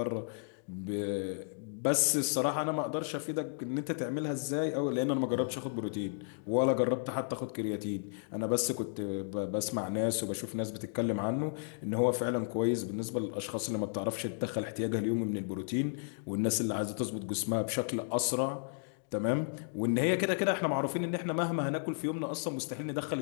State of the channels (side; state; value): right; silent; digital silence